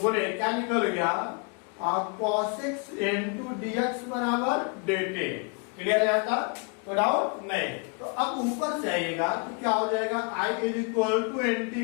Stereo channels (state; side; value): quieter; right; 35.2 dB